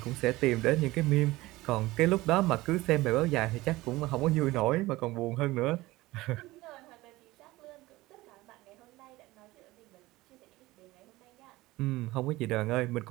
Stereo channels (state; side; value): quieter; left; 19.0 dB